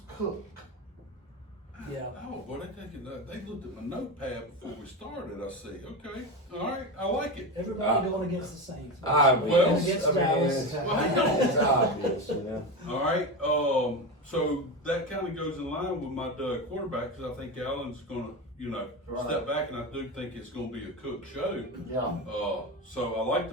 Cook. Yeah. Oh, boy, they looked at my notepad before we started, I see. Okay, all right, I like it. Everybody going against the Saints. Well, Against I mean, Dallas. it's obvious, you know. All right, so that kind of goes in line with my quarterback, because I think Allen's going to, Right. step back, and I do think it's going to be a Cook show. Yeah. So I like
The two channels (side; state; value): both; normal; correlation 0.20